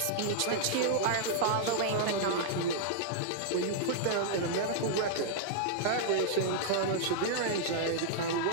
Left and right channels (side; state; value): both; different; correlation -0.01